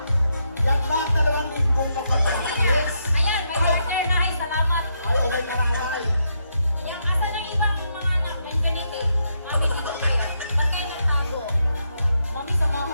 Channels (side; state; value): both; inverted; correlation -0.79